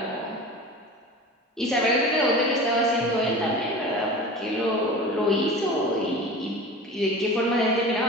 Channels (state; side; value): normal; both; correlation 0.35